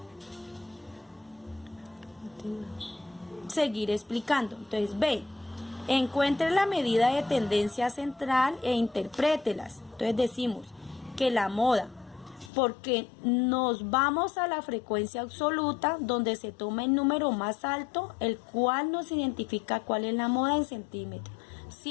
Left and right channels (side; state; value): right; drops out; at 12.5 s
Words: seguir explicando. Entonces, B, encuentre la medida de tendencia central e interprételas. Entonces decimos que la moda, porque nos vamos a la frecuencia absoluta, donde se toma el número más alto, el cual nos identifica cuál es la moda en centímetros.